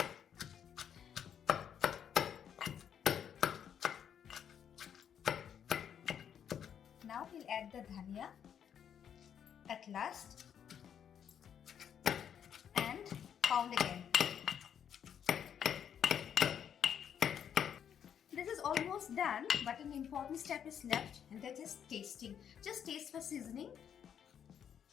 Now we'll add the dhania at last and pound again. This is almost done, but an important step is left, and that is tasting. Just taste for seasoning.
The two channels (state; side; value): quieter; right; 8.6 dB